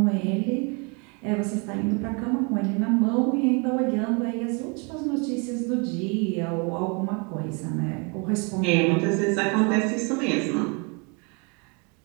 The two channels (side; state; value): left; quieter; 33.1 dB